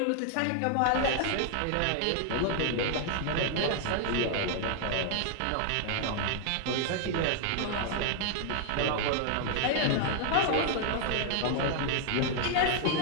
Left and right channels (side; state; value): both; different; correlation 0.00